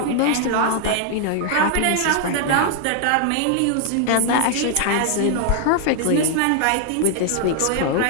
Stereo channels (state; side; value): different; both; correlation 0.00